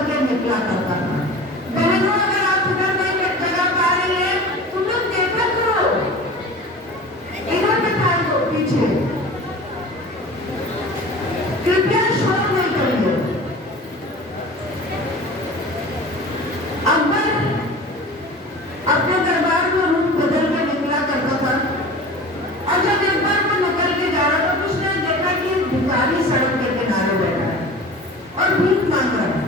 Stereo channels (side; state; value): both; normal; correlation 0.38